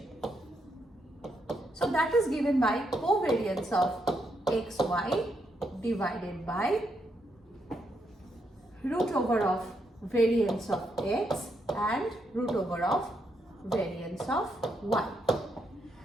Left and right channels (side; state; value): both; normal; correlation 0.79